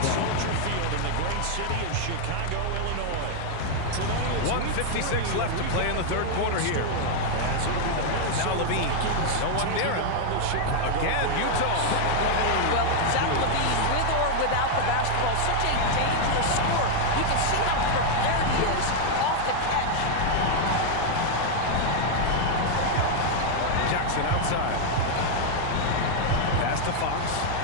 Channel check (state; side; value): different; both; correlation 0.00